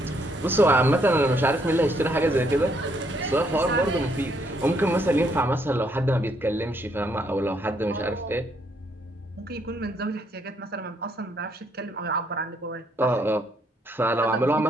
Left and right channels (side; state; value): both; normal; correlation 0.71